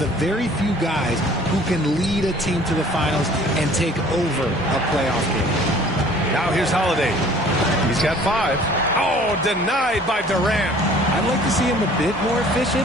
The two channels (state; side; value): normal; both; correlation 0.52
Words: very few guys who can lead a team to the finals and take over a playoff game. Now here's Holiday. He's got 5. Oh, denied by Durant. I'd like to see him a bit more